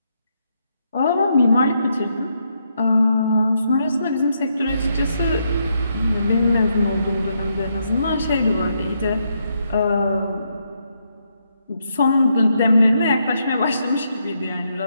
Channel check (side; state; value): both; inverted; correlation -0.78